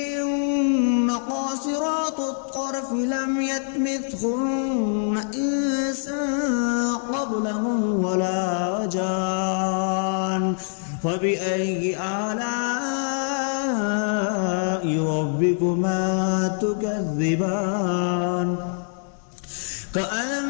قاصرات الطرف لم يطمثهن إنس قبلهم ولا جان فبأي آلاء ربكما تكذبان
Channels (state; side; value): silent; right; digital silence